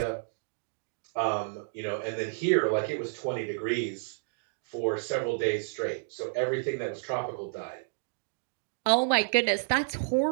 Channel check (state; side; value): silent; left; digital silence